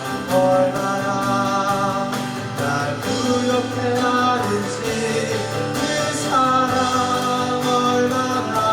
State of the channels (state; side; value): identical; both; correlation 1.00